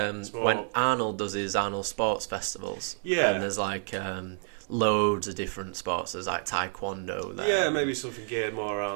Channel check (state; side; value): silent; left; 58 dB below the other